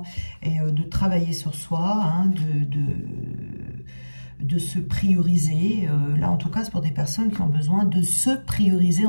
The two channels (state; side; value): inverted; both; correlation -1.00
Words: de travailler sur soi, hein, de se prioriser. Là, en tout cas, c'est pour des personnes qui ont besoin de se prioriser